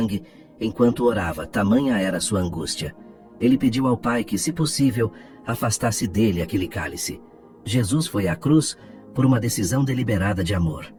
enquanto orava, tamanha era sua angústia. Ele pediu ao Pai que, se possível, afastasse dele aquele cálice. Jesus foi à cruz por uma decisão deliberada de amor.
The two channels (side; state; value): both; identical; correlation 1.00